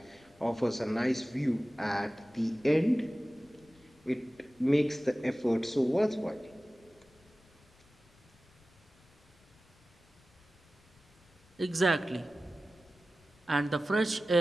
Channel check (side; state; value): left; noise; rumble, 30 dB below the sound